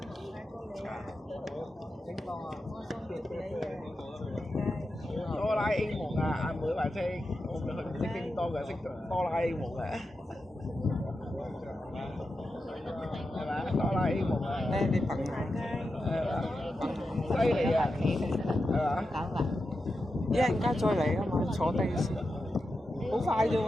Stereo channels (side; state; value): both; normal; correlation 0.89